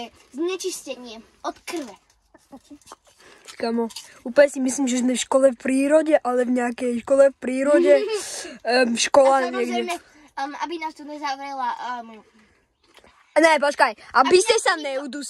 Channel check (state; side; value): identical; both; correlation 1.00